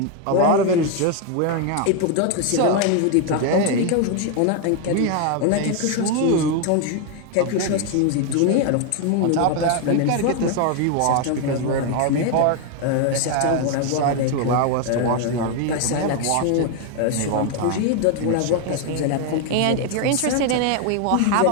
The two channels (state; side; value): different; both; correlation 0.01